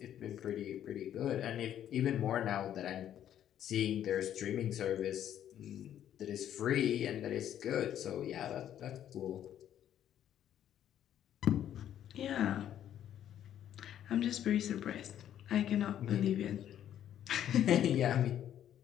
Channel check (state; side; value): quieter; right; 10.7 dB